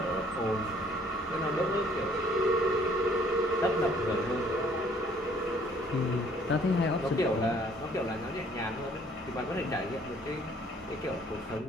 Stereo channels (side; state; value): both; normal; correlation 0.60